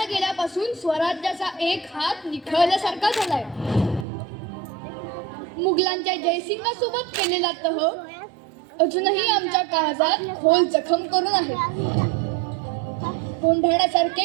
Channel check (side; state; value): left; drops out; at 4.0 s